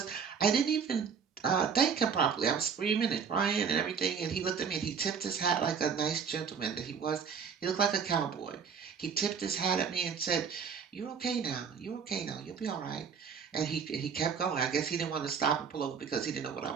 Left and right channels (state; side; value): quieter; left; 6.5 dB